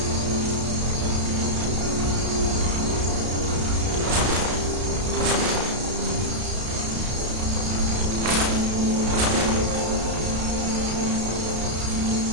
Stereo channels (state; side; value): late; left; 32 ms